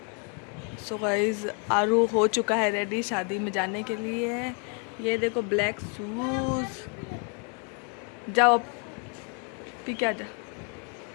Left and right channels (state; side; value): quieter; right; 38.5 dB